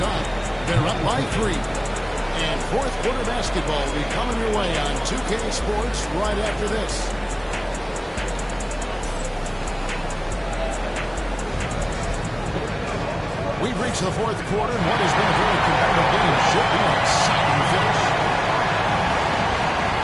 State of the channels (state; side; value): identical; both; correlation 1.00